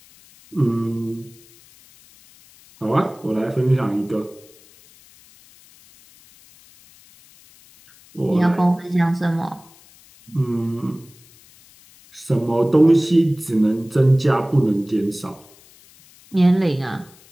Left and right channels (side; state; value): left; noise; hiss, 26 dB below the sound